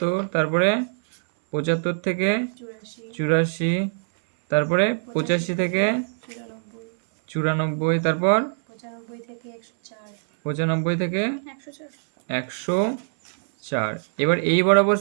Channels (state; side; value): silent; left; 63 dB below the other